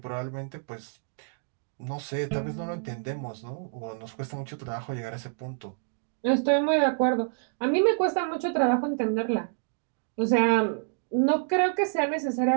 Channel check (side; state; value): left; silent; digital silence